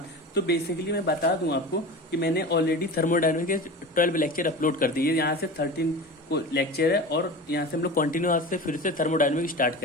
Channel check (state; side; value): normal; both; correlation 0.31